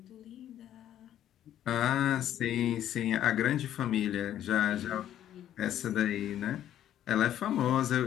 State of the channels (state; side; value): quieter; right; 11.4 dB